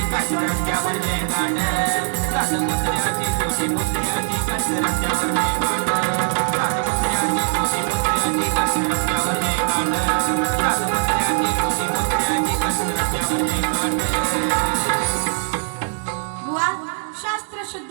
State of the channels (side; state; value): left; silent; digital silence